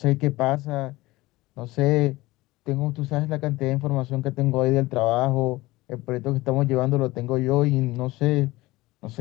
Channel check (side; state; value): right; quieter; 19.7 dB